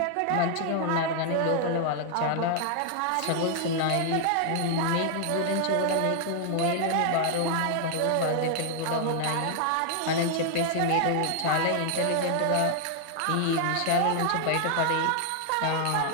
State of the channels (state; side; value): different; both; correlation 0.00